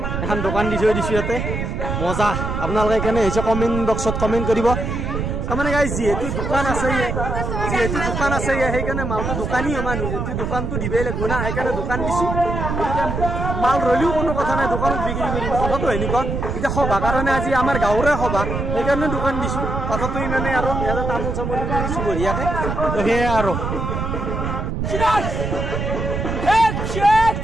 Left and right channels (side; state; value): right; noise; rumble, 3 dB below the sound